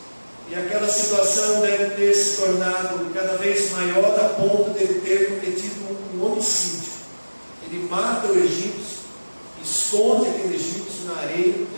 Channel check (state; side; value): inverted; both; correlation -1.00